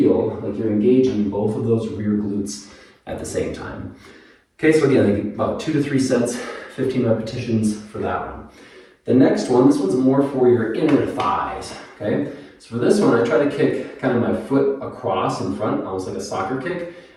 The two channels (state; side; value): identical; both; correlation 1.00